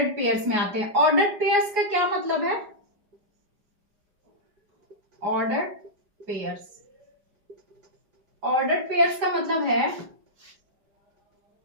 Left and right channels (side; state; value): left; late; 5.0 ms